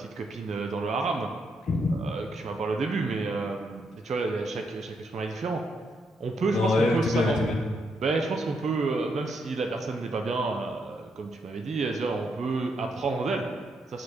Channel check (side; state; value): both; normal; correlation 0.78